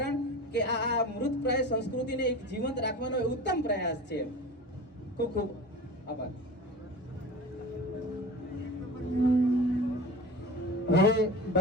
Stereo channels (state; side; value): normal; both; correlation 0.34